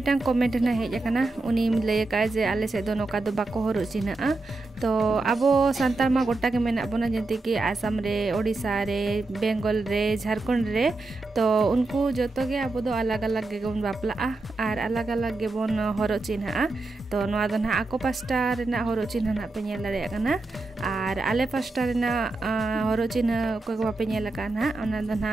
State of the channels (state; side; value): quieter; left; 3.2 dB